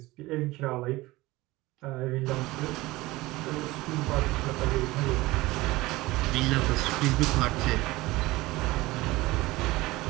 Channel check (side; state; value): left; quieter; 19.8 dB